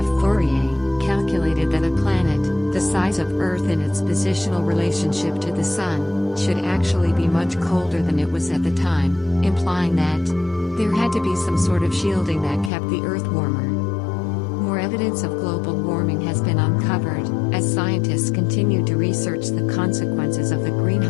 Fourier calculated that a planet, the size of Earth in its positional relationship to the Sun, should actually be much colder than it was at the time, implying that there had to be some sort of shielding that kept the Earth warmer. More evidence of global warming has been uncovered, as scientists continue to research the consequences of the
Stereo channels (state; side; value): drops out; right; at 12.7 s